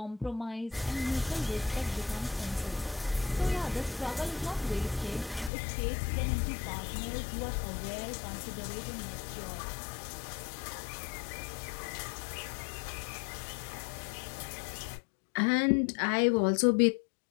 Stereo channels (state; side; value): drops out; right; at 5.5 s